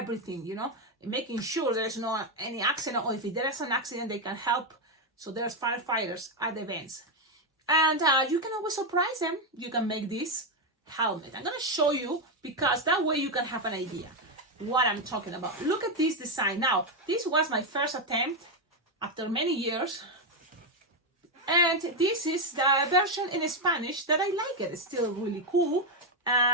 making sure there's no any accident, or if there is an accident, they can help. So there's firefighters at the events. And you can always surprise them. You can make this helmet. I'm gonna show you because that way you can have an idea what I'm talking about. Look at this design. Now, this was my first attempt after many years. And this is the version in Spanish that I like it. It's still really cool.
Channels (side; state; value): both; normal; correlation 0.06